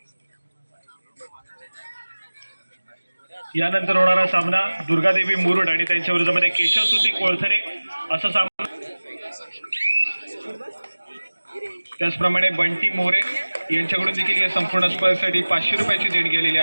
यानंतर होणारा सामना दुर्गादेवी मुरुड आणि त्यांच्या विरोधामध्ये केशव सुती कोळथरे असा सामना। त्याचप्रमाणे बंटी मोरे यांच्याकडून देखील या संपूर्ण स्पर्धेसाठी 500 रुपयाची देणगी आलेली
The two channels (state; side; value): inverted; both; correlation -1.00